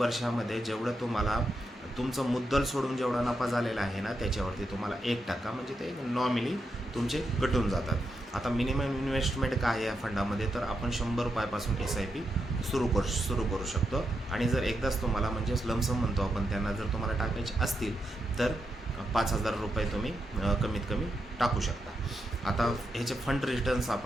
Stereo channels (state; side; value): normal; both; correlation 0.84